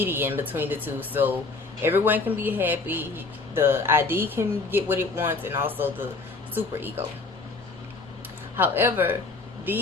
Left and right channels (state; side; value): quieter; right; 3.8 dB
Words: between the two, so everyone can be happy. The ID can get what it wants, and also the superego. However,